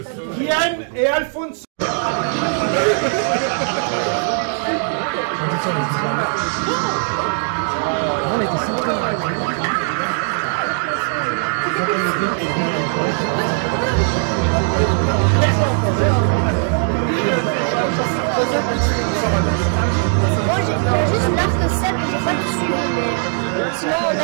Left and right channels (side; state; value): left; silent; 57 dB below the other